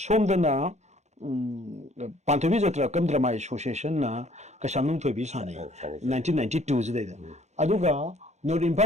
ꯄꯥꯟꯊꯣꯏꯕꯤ ꯖꯇ꯭ꯔꯥ ꯀꯝ ꯗ꯭ꯔꯃꯥ ꯑꯦꯁꯣꯁꯤꯌꯦꯁꯟꯅ ꯀꯩꯁꯥꯝꯊꯣꯡ ꯊꯣꯏꯕꯤ ꯁꯥꯟꯅꯩ 1992 ꯁꯤꯗꯩꯗ ꯑꯗꯨꯒ ꯅꯣꯔꯠ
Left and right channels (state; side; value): late; left; 0.33 ms